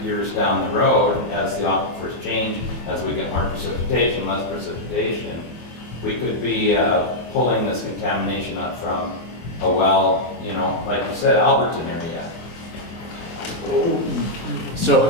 years down the road, as the aquifers change, as we get more precipitation, less precipitation, we could be pulling this contamination up from a well, you know, like you said, Alberton area.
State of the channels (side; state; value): right; late; 24 ms